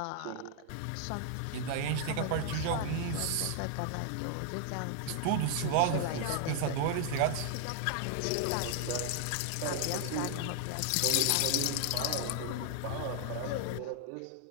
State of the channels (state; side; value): different; both; correlation 0.00